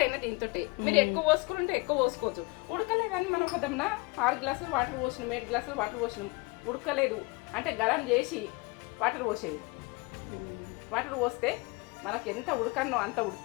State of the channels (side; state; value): right; quieter; 26.1 dB